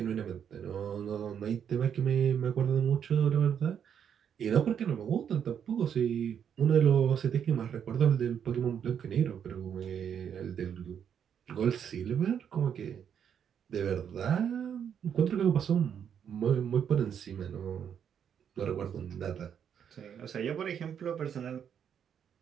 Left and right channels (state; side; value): quieter; left; 8.3 dB